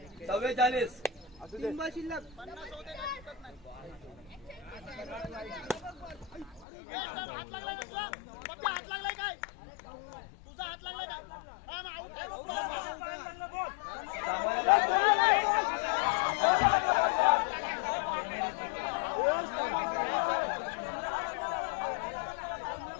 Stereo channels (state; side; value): drops out; right; at 6.7 s